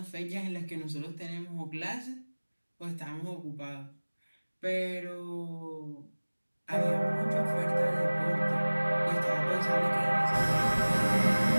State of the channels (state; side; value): inverted; both; correlation -1.00